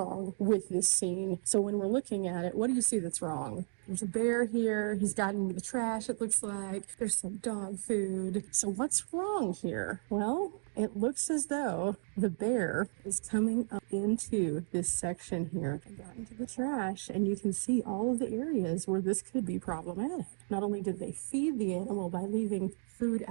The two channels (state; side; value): silent; left; digital silence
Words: with this scene. So when we're looking at it, what do you see that's wrong? There's a bear here. He's gotten into the trash, it looks like. There's some dog food. So what's wrong here? Well, it looks as though the bear is coming up into this section here and got into the trash, and you can see all of the areas where this could be problematic. Not only did they feed the animal by leaving food